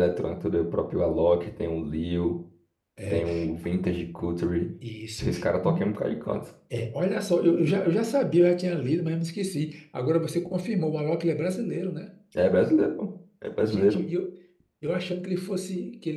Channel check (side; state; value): both; identical; correlation 1.00